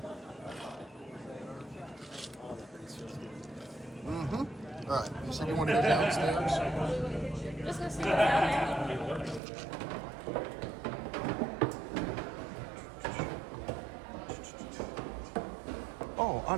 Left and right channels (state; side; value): drops out; left; at 9.4 s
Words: Mm-hmm. All right. You said you wanted to go downstairs? Just go see what's down there. Oh,